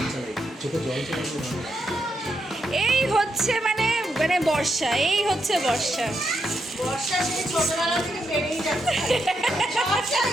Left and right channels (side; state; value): both; normal; correlation 0.81